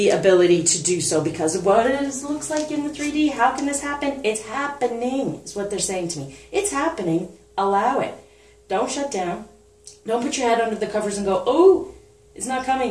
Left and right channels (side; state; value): both; identical; correlation 1.00